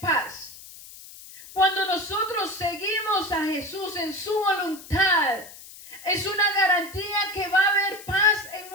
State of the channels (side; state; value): left; noise; hiss, 17 dB below the sound